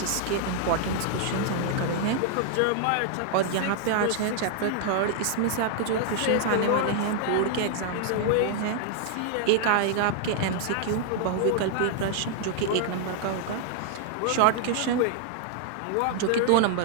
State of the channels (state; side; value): different; both; correlation 0.00